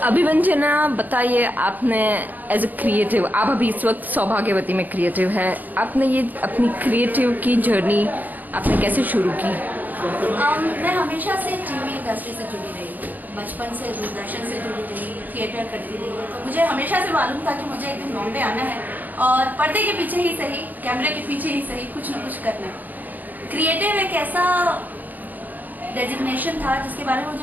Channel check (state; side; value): late; left; 0.084 ms